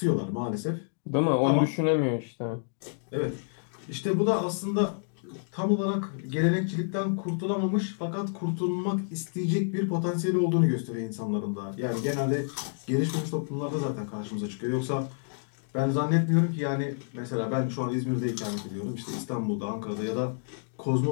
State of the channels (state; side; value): silent; right; digital silence